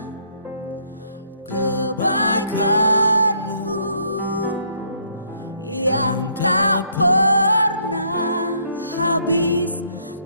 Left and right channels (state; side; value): inverted; both; correlation -0.67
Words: kebaikan-Mu yang tak pernah habis